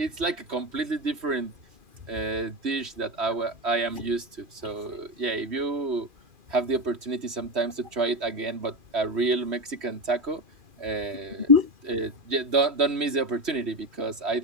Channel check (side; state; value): left; late; 3.1 ms